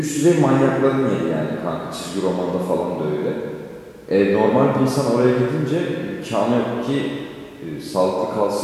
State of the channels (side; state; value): both; identical; correlation 1.00